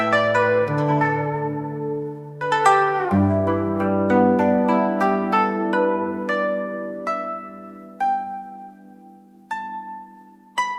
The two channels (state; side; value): identical; both; correlation 1.00